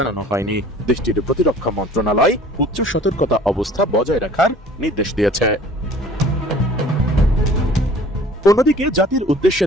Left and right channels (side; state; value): both; normal; correlation 0.49